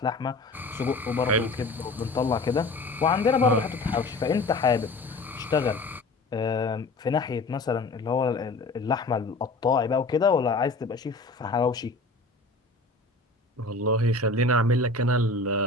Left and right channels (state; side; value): quieter; right; 3.2 dB